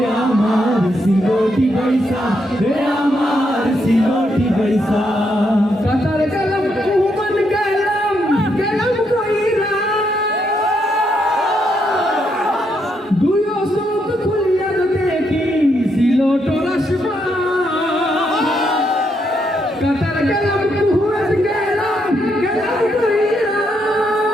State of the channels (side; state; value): both; normal; correlation 0.78